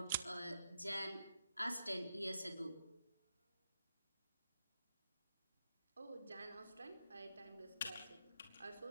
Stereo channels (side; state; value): both; inverted; correlation -0.83